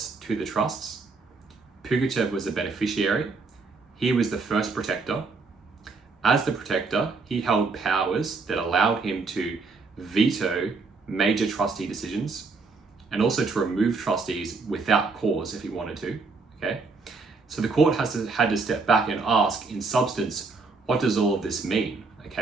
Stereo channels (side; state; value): left; quieter; 4.2 dB